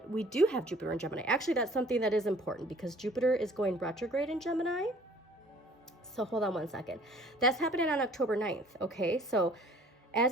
we do have Jupiter in Gemini. Actually, that's something that is important because Jupiter is going retrograde in Gemini. So hold on one second. That's happening on October 9th. Okay, so as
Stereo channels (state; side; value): normal; both; correlation 0.53